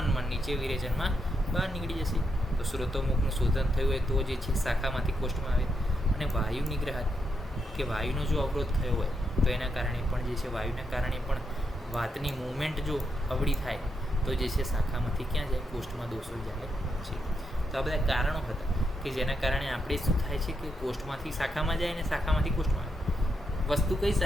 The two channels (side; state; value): both; normal; correlation 0.81